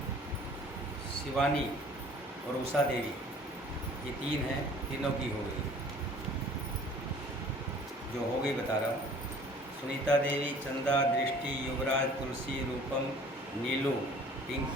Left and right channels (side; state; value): both; normal; correlation 0.51